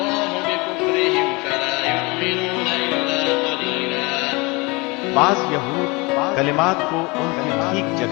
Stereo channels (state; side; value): quieter; right; 26.1 dB